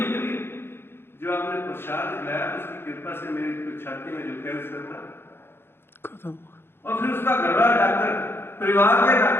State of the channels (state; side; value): late; right; 0.11 ms